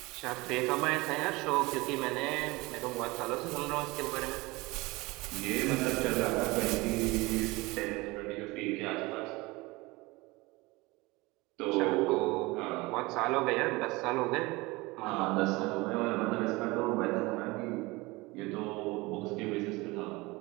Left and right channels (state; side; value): quieter; left; 22.8 dB